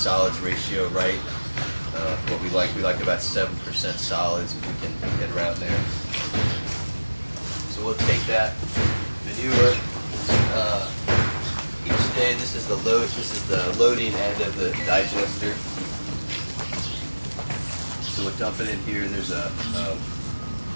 ratio right. What we like about 7% solids if we can get around there. So we'll take that manure. Each day, this is the loading end of the digester. So we'll dump it in here. There's a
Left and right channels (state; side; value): inverted; both; correlation -1.00